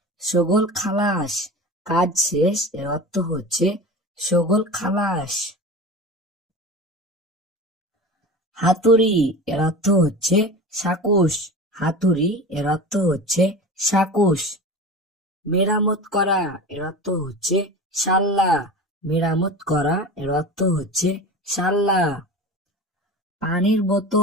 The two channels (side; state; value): both; normal; correlation 0.32